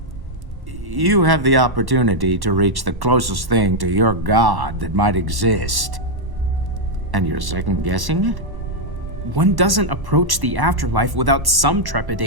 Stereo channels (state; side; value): late; left; 1.1 ms